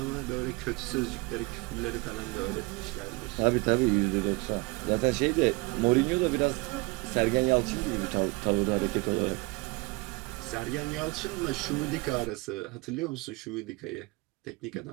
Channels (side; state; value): left; quieter; 25.9 dB